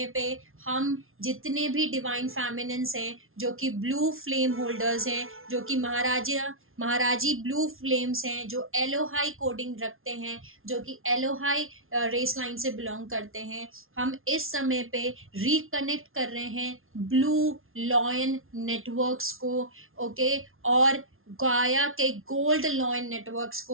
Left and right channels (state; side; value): late; left; 0.61 ms